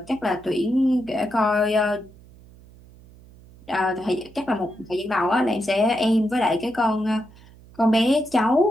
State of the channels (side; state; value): right; noise; hum, 23 dB below the sound